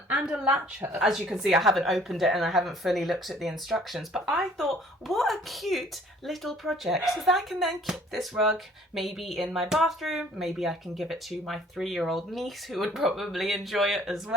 and a latch hook. As you can see, I haven't opened it and I haven't fully looked at the instructions, but I thought, what a cute little project, because I can then keep this rug maybe in my bathroom. Maybe I can give it to my 3-year-old niece who would probably enjoy it as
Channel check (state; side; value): normal; both; correlation 0.56